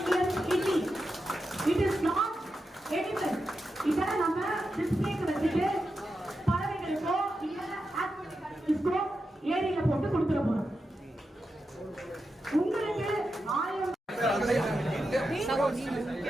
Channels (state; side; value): normal; both; correlation 0.89